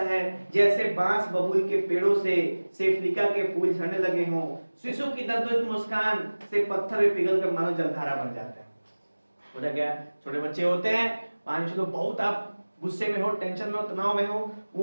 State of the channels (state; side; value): inverted; both; correlation -1.00